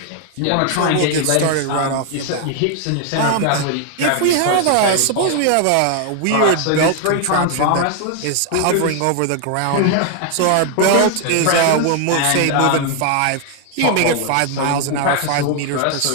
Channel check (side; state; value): both; different; correlation 0.00